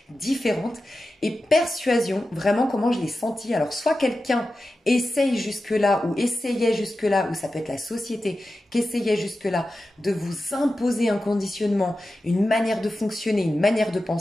différente. Et persuasion, vraiment comment je l'ai senti. Alors soit quelqu'un essaye jusque-là ou essayait jusque-là, ou ça peut être la société qui essayait jusque-là de vous imposer un conditionnement, une manière de fonctionner, une manière de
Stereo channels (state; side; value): normal; both; correlation 0.93